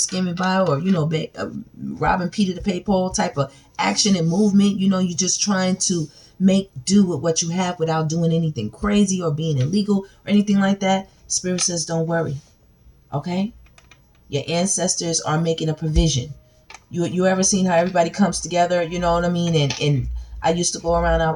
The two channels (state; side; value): identical; both; correlation 1.00